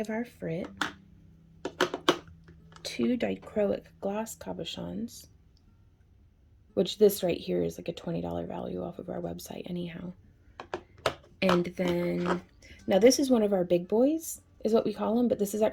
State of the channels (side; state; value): both; identical; correlation 1.00